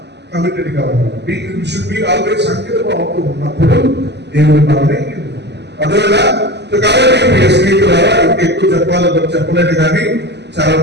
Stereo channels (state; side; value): late; left; 0.50 ms